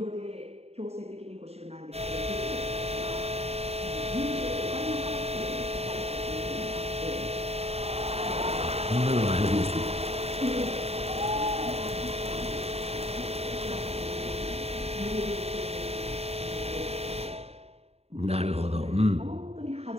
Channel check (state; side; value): late; left; 0.30 ms